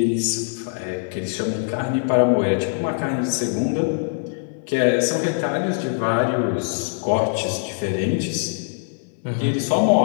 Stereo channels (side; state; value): right; silent; 64 dB below the other